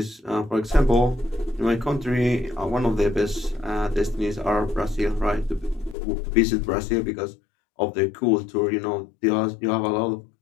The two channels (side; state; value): right; drops out; at 6.0 s